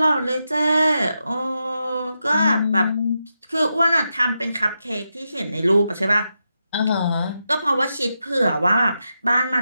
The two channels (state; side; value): inverted; both; correlation -0.87